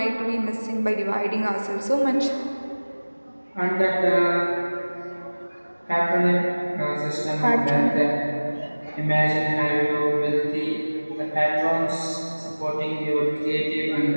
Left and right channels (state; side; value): inverted; both; correlation -1.00